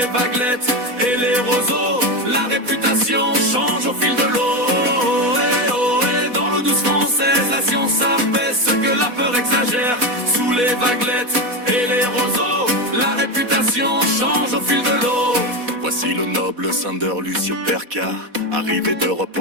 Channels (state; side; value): late; left; 4.1 ms